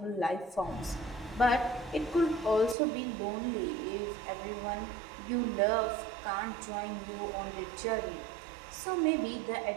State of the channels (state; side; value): drops out; left; at 2.8 s